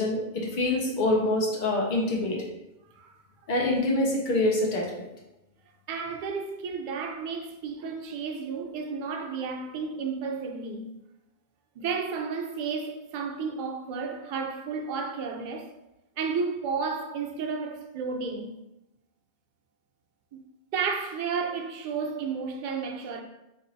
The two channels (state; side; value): late; right; 2.2 ms